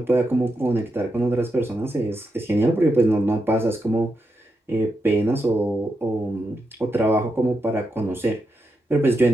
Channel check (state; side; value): normal; both; correlation 0.85